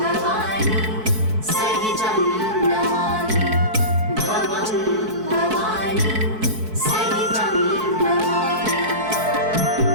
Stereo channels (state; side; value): late; left; 4.6 ms